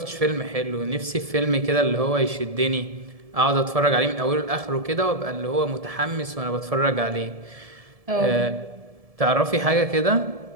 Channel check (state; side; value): late; left; 1.7 ms